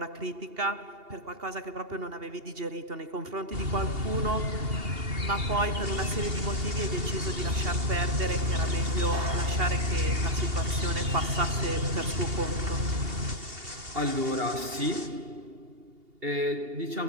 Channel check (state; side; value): late; left; 2.8 ms